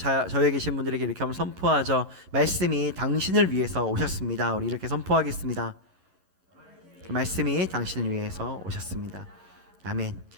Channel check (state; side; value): late; left; 11 ms